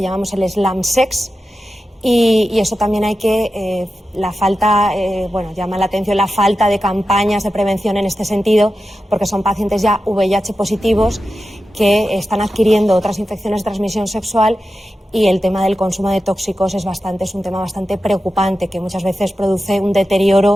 llamamos el slam sex, Y eso también hay que, llama la atención la falta de campañas de prevención en este sentido, porque son pacientes ya VIH positivos que están adquiriendo otras infecciones de transmisión sexual, y el tema del consumo de tóxicos es un tema bastante preocupante, que muchas veces produce un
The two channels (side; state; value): both; normal; correlation 0.92